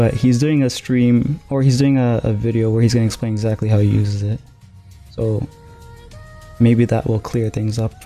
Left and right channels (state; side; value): identical; both; correlation 1.00